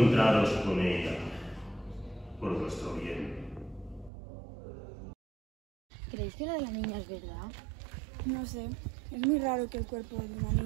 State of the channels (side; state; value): left; drops out; at 4.1 s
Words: con ella, por vuestro bien. ¿Creéis que lo de la niña es verdad? No sé, es muy raro que el cuerpo de una